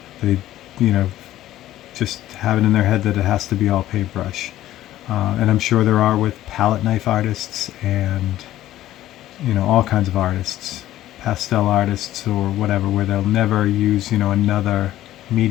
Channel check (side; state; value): right; quieter; 14.0 dB